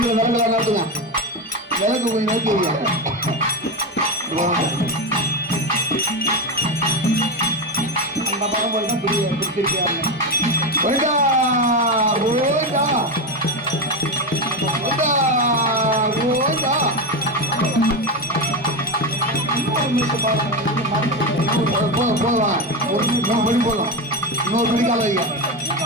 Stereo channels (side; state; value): both; normal; correlation 0.15